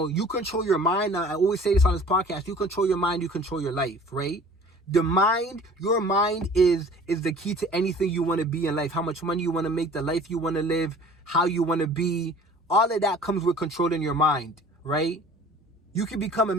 control your mind. Now, I always say this on this podcast, you control your mind, you control your life, right? Your mind is the key to anything you want to be in life. How much money you want to make, the life you want to live, how you want to be. All of that comes with controlling your mind, right? You can become a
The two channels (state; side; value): normal; both; correlation 0.47